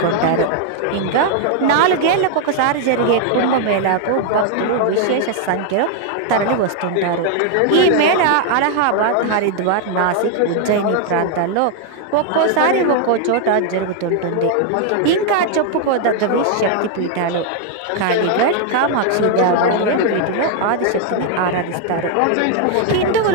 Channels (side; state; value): both; different; correlation 0.00